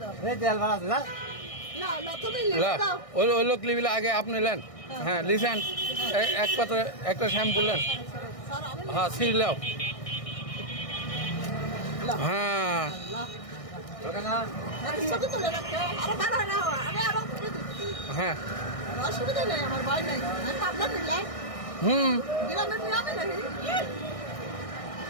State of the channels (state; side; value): late; right; 1.6 ms